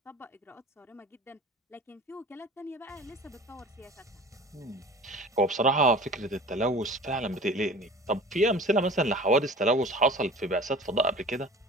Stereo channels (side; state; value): both; normal; correlation 0.41